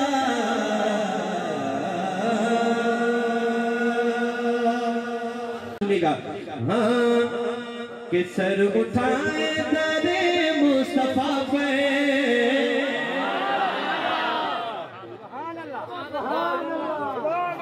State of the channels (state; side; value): identical; both; correlation 1.00